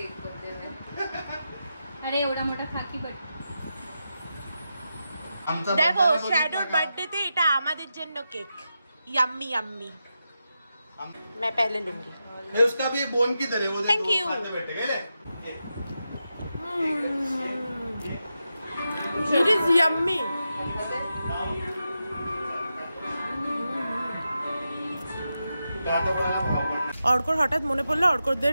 बर्थडे में। अरे एवढा मोठा खाकी बट দেখো শ্যাডোর বার্থডেতে এটা আমাদের জন্য কেক, यम्मी यम्मी। मैं पहले लूंगी। ये उसका भी बोन किधर है वो देखो। Thank you। खाते बैठे गए ले। It is yummy। অর্কর হঠাৎ মনে পড়লো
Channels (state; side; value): inverted; both; correlation -0.89